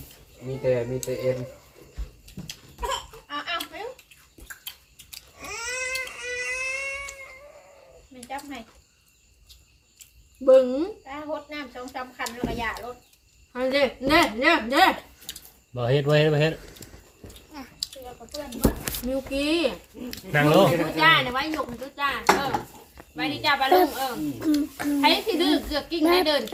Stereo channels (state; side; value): identical; both; correlation 1.00